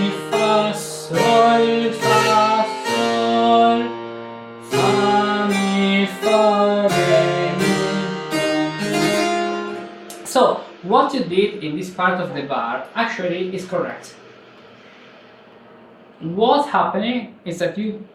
fa, sol, fa, sol, fa, mi, fa, re, mi. So, what you did in this part of the bar actually is correct. What's happening is that you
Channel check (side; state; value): both; identical; correlation 1.00